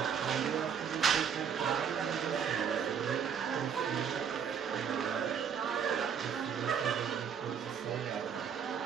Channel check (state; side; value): quieter; left; 7.5 dB